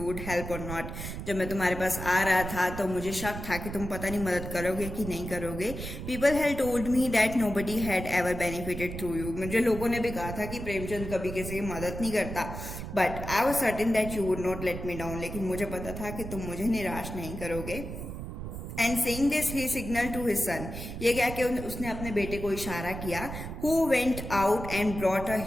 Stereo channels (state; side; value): noise; right; rumble, 8 dB below the sound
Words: would help or not. जब मैं तुम्हारे पास आ रहा था तो मुझे शक था कि तुम पता नहीं मदद करोगे कि नहीं करोगे। People had told me that nobody had ever benefited through you. मुझे लोगों ने भी कहा था कि प्रेमचंद कभी किसी की मदद नहीं करता। But I was certain that you would not let me down. लेकिन मुझे पता था कि तुम मुझे निराश नहीं करोगे। And saying this he signal to his son, ये क्या कि उसने अपने बेटे को इशारा किया। Who went out and brought a